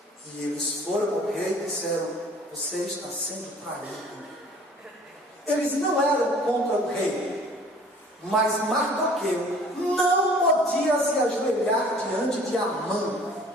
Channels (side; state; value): both; normal; correlation 0.51